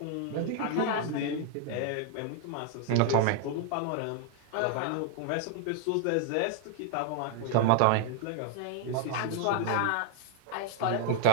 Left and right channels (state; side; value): different; both; correlation 0.00